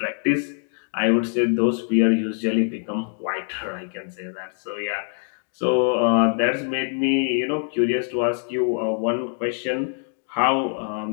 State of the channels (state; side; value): silent; right; 56 dB below the other